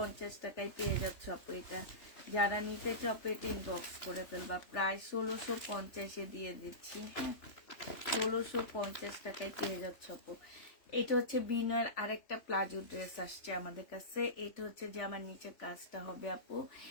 টাকায় পেয়ে যাচ্ছ আপু এটা। যারা নিতে চাও পেটে ইনবক্স করে ফেলবা, প্রায় 1650-এ দিয়ে দিচ্ছি। হ্যাঁ, 1650 টাকায় পেয়ে যাচ্ছ আপু। এটা হচ্ছে বিনয়ের আরেকটা প্লাজো ড্রেস আসছে আমাদের কাছে। এটা হচ্ছে যে আমার নিচের কাজটা হবে আপু,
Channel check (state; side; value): late; right; 3.1 ms